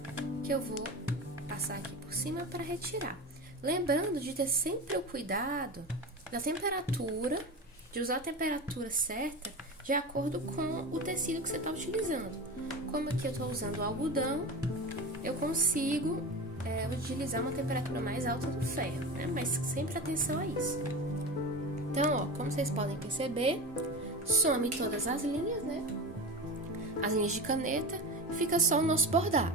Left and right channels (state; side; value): normal; both; correlation 0.27